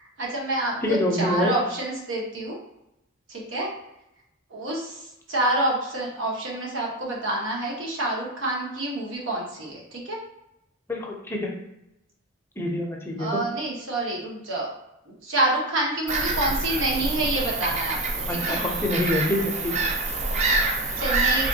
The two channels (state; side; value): normal; both; correlation 0.17